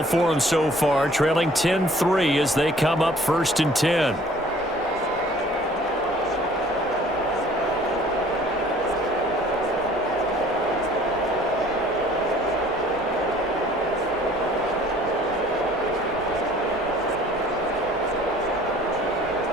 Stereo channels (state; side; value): normal; both; correlation 0.54